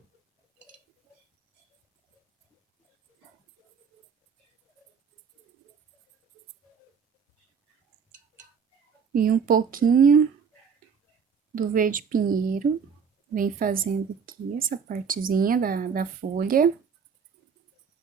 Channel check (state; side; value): quieter; left; 6.4 dB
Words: E um pouquinho do verde pinheiro. Vem fazendo aqui essa partezinha da folha.